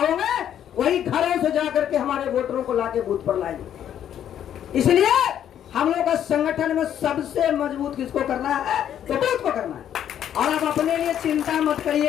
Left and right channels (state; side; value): quieter; right; 10.1 dB